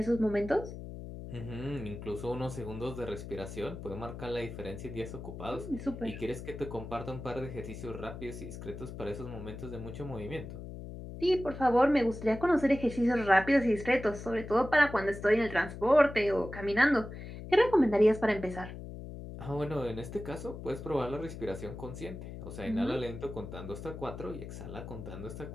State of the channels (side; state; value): left; noise; hum, 10 dB below the sound